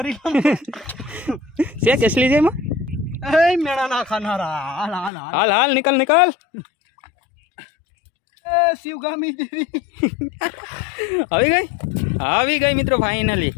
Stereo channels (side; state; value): right; drops out; at 5.1 s